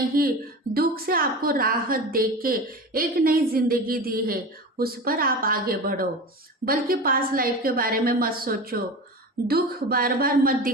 ही दुख से आपको राहत दे के एक नई जिंदगी दी है, उस पर आप आगे बढ़ो। बल्कि पास्ट लाइफ के बारे में मत सोचो, दुख बार बार मत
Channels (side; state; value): both; normal; correlation 0.30